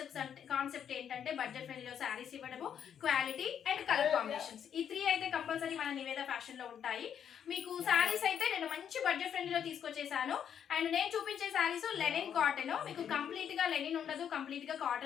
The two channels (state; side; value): quieter; right; 8.6 dB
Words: కాన్సెప్ట్ ఏంటంటే బడ్జెట్ ఫ్రెండ్లీలో శారీస్ ఇవ్వడము, క్వాలిటీ అండ్ కలర్ కాంబినేషన్స్. ఈ 3 అయితే కంపల్సరీ మన నివేద ఫ్యాషన్ లో ఉంటాయి. మీకు శారీస్ అయితే నేను మంచి బడ్జెట్ ఫ్రెండ్లీలో తీసుకొచ్చేసాను. అండ్ నేను చూపించే శారీస్ లెనిన్ కాటన్. మీకు కంప్లీట్ గా లెనిన్ ఉండదు, కంప్లీట్ గా